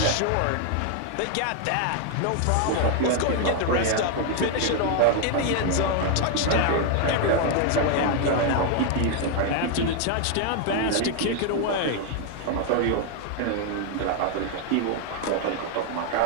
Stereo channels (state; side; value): different; both; correlation 0.00